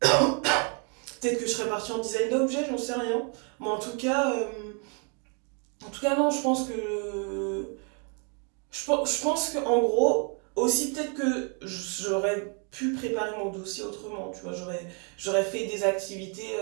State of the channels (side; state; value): left; quieter; 38.5 dB